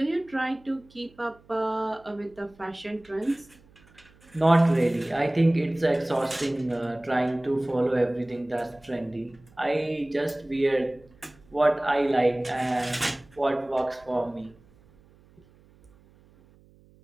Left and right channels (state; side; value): noise; right; hum, 28 dB below the sound